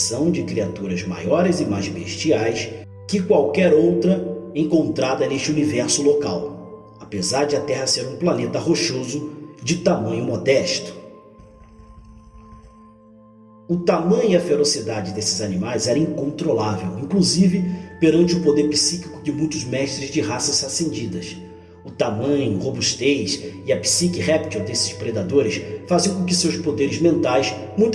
de criaturas maiores e mais bestiais que qualquer outra encontrada neste universo local, apesar de a Terra ser um planeta rochoso de tamanho modesto. O tamanho e a ferocidade desses animais era incontrolável, inclusive perante o poder psíquico de muitos mestres de raças ascendidas. O tamanho, robustez e a psique réptil desses predadores faziam com que seus poderes mentais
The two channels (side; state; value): both; identical; correlation 1.00